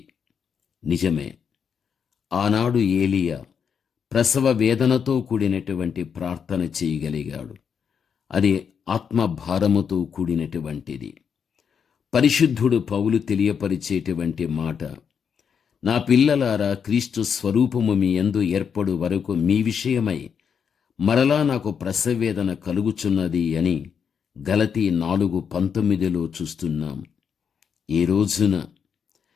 నిజమే, ఆనాడు ఏలియా ప్రసవ వేదనతో కూడినటువంటి ప్రార్థన చేయగలిగాడు. అది ఆత్మభారముతో కూడినటువంటిది. పరిశుద్ధుడు పౌలు తెలియపరిచేటువంటి మాట, నా పిల్లలారా, క్రీస్తు స్వరూపము మీ యందు ఏర్పడు వరకు మీ విషయమై మరలా నాకు ప్రసవేదన కలుగుచున్నది అని గలతీ 4:19 చూస్తున్నాం. ఈ రోజున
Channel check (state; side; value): quieter; right; 7.0 dB